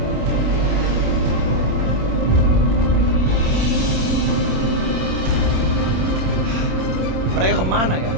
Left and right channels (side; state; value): left; late; 27 ms